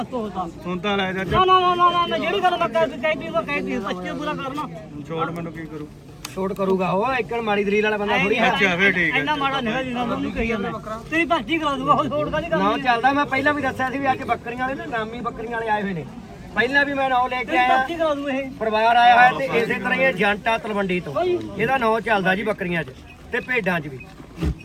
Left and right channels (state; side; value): identical; both; correlation 1.00